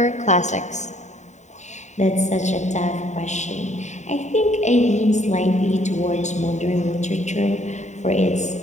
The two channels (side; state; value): right; late; 0.34 ms